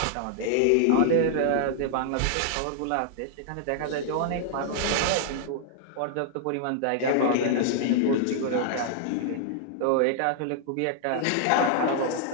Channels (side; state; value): both; different; correlation -0.01